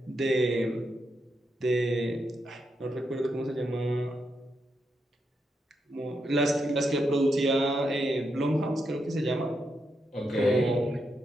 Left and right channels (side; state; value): both; normal; correlation 0.83